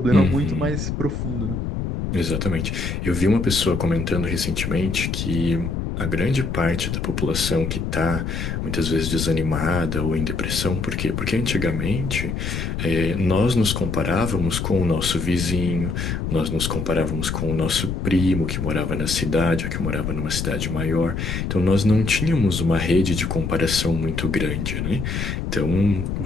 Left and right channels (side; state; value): left; noise; rumble, 3 dB below the sound